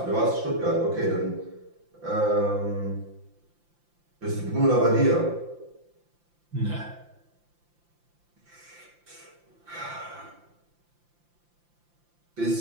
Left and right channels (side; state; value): left; late; 5.8 ms